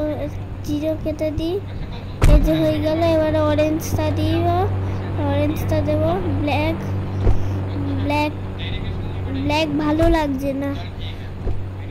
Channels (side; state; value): both; identical; correlation 1.00